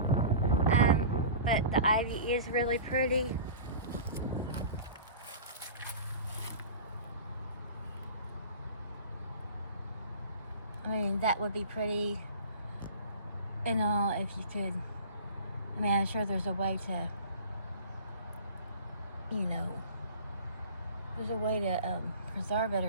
But the ivy is really pretty. I mean, that would be pretty and all if you could. I mean, I'm sure there's a way to, you know, there's a way to preserve it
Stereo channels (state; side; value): inverted; both; correlation -0.38